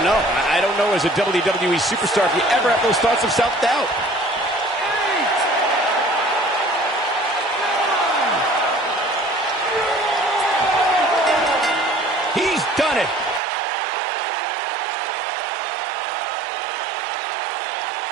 know. I don't know as a WWE superstar if you ever have those thoughts of self-doubt. He's done it.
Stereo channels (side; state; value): left; drops out; at 13.4 s